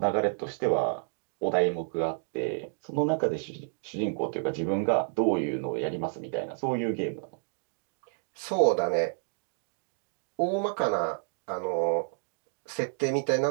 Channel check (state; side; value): silent; left; 58 dB below the other